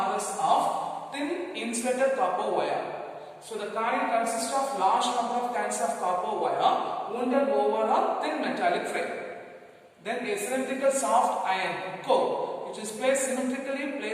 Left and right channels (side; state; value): both; identical; correlation 1.00